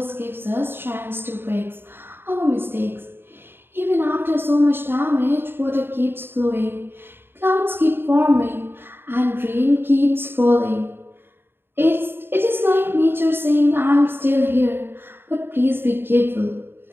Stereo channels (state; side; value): late; left; 0.11 ms